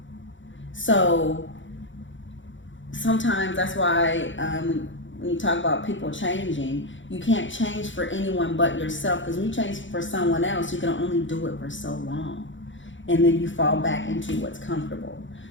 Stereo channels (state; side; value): late; right; 0.55 ms